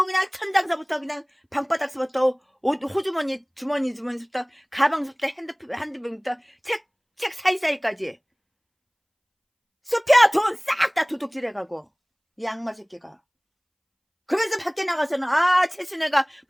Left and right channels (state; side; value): identical; both; correlation 1.00